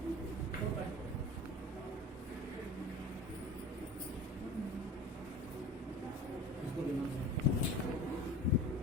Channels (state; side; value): normal; both; correlation 0.36